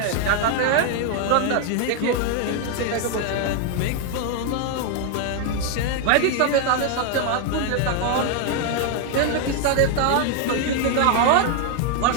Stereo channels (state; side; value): different; both; correlation 0.01